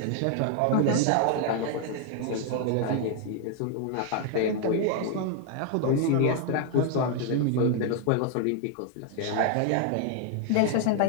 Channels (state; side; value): different; both; correlation 0.00